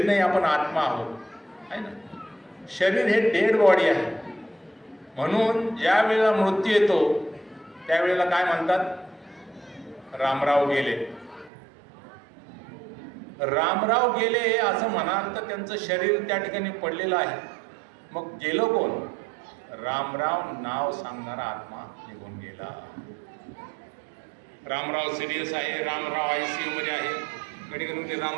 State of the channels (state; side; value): drops out; left; at 11.5 s